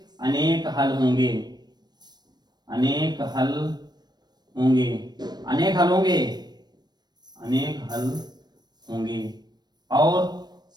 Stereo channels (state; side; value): late; left; 0.20 ms